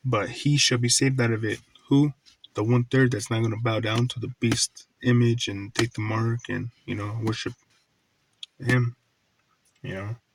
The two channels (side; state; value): both; identical; correlation 1.00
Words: but he shall be saved out of it. Who? The 1/3 that's not going to bow down to the beast image and take the mark and, worship him. You know,